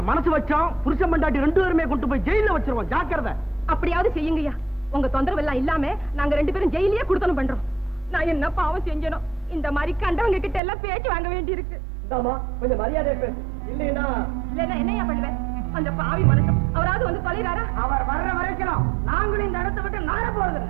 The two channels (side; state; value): left; drops out; at 10.6 s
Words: மனசு வச்சோம், புருஷன் பண்டாட்டி 2 பேருமே கொண்டு போய் ஜெயில வச்சிருவோம். ஜாக்கிரதை. அப்படியாவது செய்யுங்கய்யா. உங்க தொந்தரவு எல்லாம் இல்லாம நாங்க 2 பேரும் ஜெயிலே கொடுத்தனும் பண்றோம். நான் என்ன பாவம் செஞ்சனும்? இந்த மாதிரி கண்டவங்க கிட்ட எல்லாம் பேச்சு வாங்க வேண்டி இருக்கு. கொஞ்சம் மரியாதை பேசு. இல்லைன்னா என்னையா பண்ணுவேன்? அந்த பாவி மனுஷன் அவராவது வந்து தொலைறாரா? அவர் வர்ற வரைக்கும் நாங்களும் இந்த இடத்தை விட்டு நார போறது.